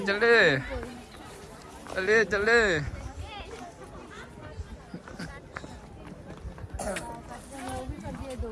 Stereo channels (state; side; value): identical; both; correlation 1.00